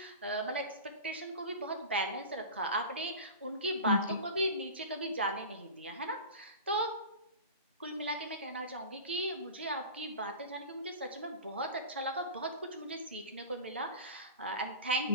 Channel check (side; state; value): both; inverted; correlation -0.32